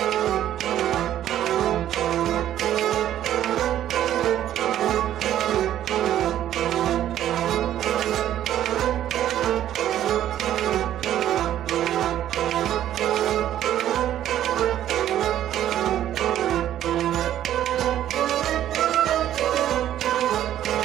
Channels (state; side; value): quieter; left; 11.8 dB